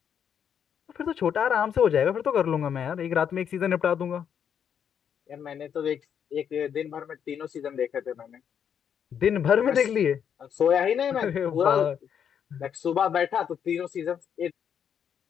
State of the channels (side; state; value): right; quieter; 8.2 dB